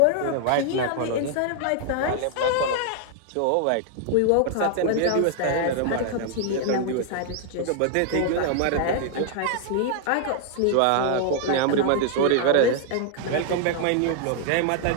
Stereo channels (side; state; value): both; different; correlation 0.00